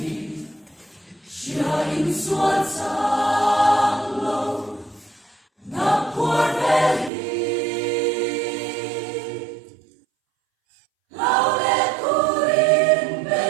siya insuat sa anglo na porveli. Laulet urin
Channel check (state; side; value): drops out; left; at 7.1 s